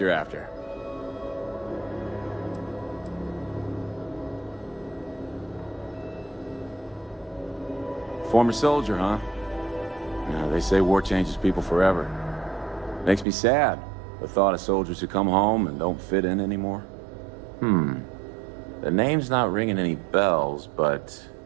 after? Former soldier, huh? Yeah, they say war changes people forever. Makes me sad, the thought of soldiers who come home and don't fit in anymore. The name's not ringing any bells, but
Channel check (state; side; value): drops out; left; at 13.2 s